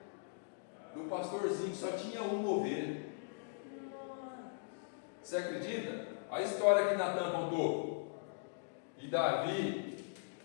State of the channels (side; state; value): right; silent; digital silence